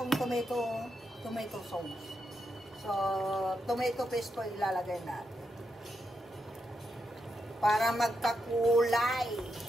tomato sauce. So, tomato paste po ilalagay natin. Para magkakulay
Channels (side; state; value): both; normal; correlation 0.84